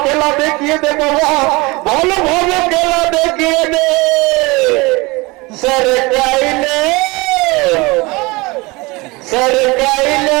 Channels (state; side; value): quieter; left; 24.4 dB